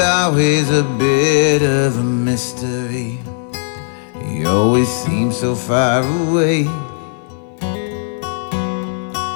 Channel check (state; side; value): silent; right; digital silence